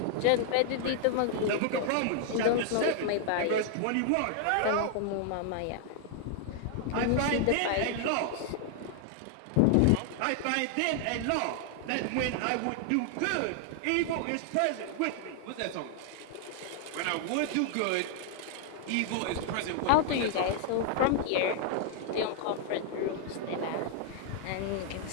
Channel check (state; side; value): different; both; correlation 0.00